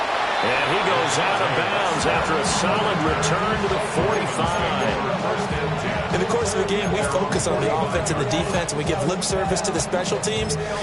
And he goes out of bounds after a solid return to the 45. In the course of the game, we focus on the offense and the defense, and we give lip service to the special teams.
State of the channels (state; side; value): identical; both; correlation 1.00